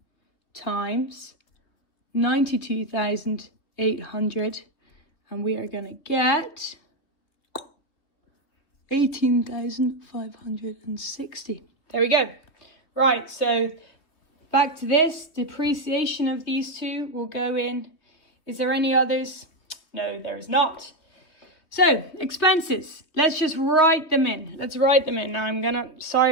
times 92,800, and we are going to get 18,560. There we go. Right, so back to this. Depreciation of these two will go in. Is there any others? No, there is not. So, expenses. Let's just write them in. Let's write them in. Now sorry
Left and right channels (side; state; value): right; late; 3.2 ms